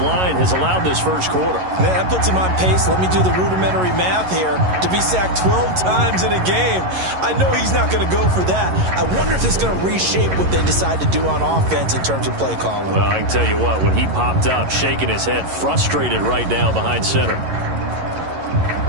line has allowed this first quarter. Man, that puts him on pace. Let me do the rudimentary math here. To be sacked 12 times in a game, I know he's not going to go for that. I wonder if it's going to reshape what they decide to do on offense in terms of play calling. Well, I can tell you what, when he popped up, shaking his head, frustrated right now behind center.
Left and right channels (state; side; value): late; left; 11 ms